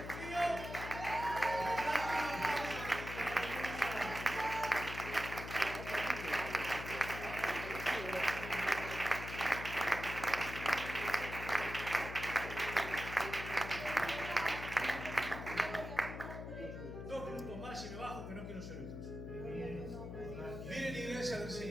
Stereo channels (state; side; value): noise; left; hum, 8 dB below the sound